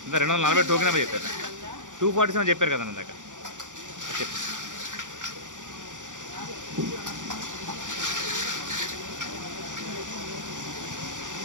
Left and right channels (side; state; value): left; late; 0.87 ms